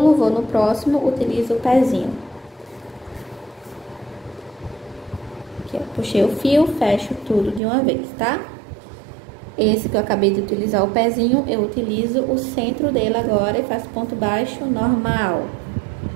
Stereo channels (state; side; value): drops out; left; at 7.6 s